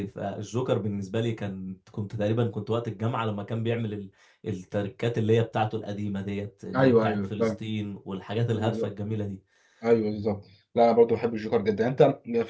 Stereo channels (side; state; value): both; identical; correlation 1.00